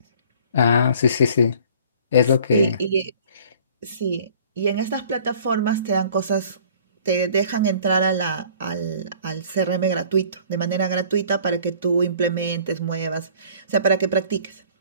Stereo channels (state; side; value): inverted; both; correlation -0.51